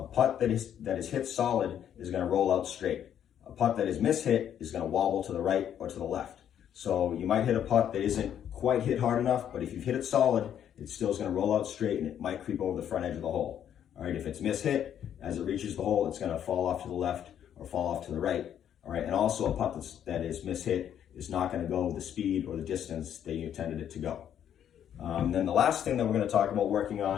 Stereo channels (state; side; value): quieter; right; 9.7 dB